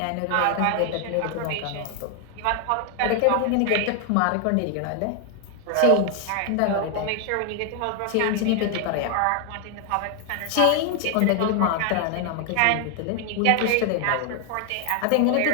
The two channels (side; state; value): both; different; correlation 0.00